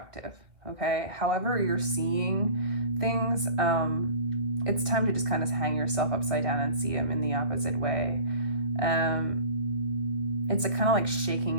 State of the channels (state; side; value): late; left; 2.3 ms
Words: okay? However you're seeing things, it's time to just kind of hang yourself upside down and see them in the opposite way. It's a kind of like